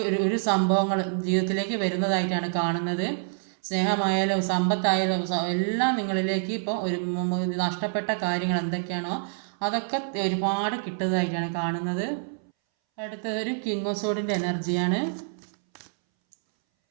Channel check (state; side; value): silent; left; 60 dB below the other